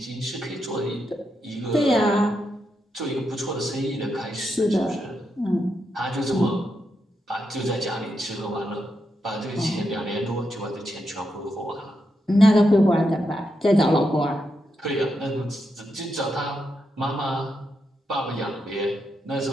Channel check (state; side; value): normal; both; correlation 0.84